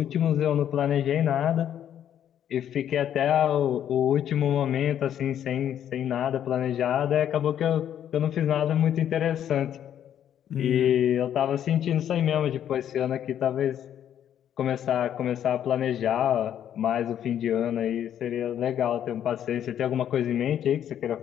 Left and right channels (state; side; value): quieter; right; 10.0 dB